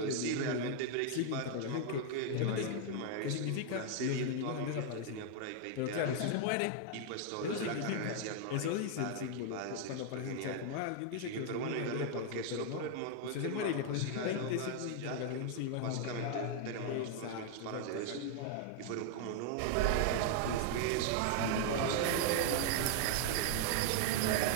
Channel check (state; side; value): different; both; correlation 0.00